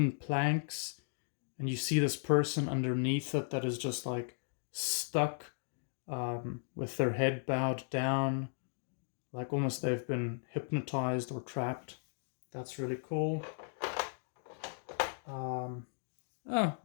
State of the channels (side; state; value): right; silent; digital silence